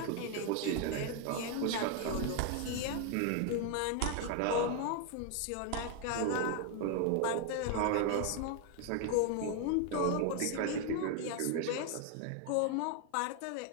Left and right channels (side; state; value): both; different; correlation 0.01